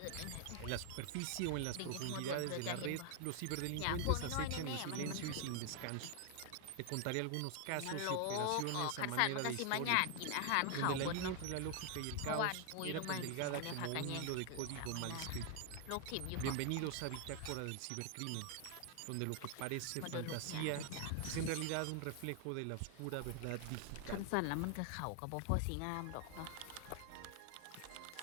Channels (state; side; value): different; both; correlation 0.00